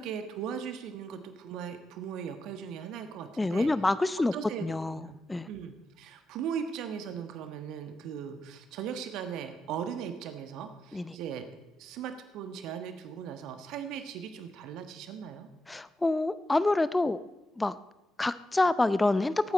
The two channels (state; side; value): normal; both; correlation 0.87